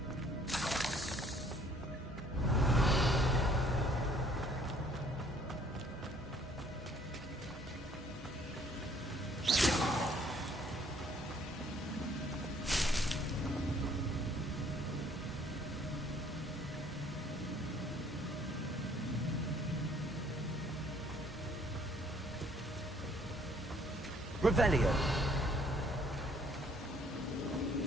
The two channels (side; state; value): both; normal; correlation 0.61